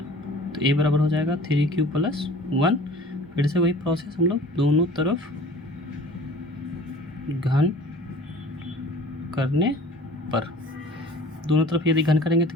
तो a बराबर हो जाएगा 3q+1। फिर से वही प्रोसेस, हम लोग दोनों तरफ घन करने पर, दोनों तरफ यदि घन करेंगे तो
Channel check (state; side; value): normal; both; correlation 0.45